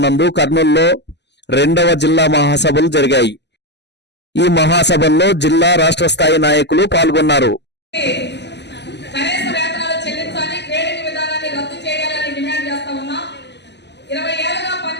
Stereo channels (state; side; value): late; right; 0.50 ms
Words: నందు కర్నూలులో 2వ జిల్లా మహాసభలు జరిగాయి. ఈ మహాసభల్లో జిల్లా రాష్ట్ర స్థాయి నాయకులు పాల్గొన్నారు. కనీస వేతనాలు చెల్లించాలి, గ్రేడింగ్ విధానాన్ని రద్దు చేయాలని డిమాండ్ చేస్తా ఉన్నాం. 20 ఏళ్లుగా